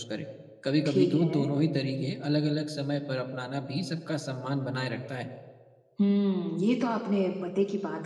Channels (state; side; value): identical; both; correlation 1.00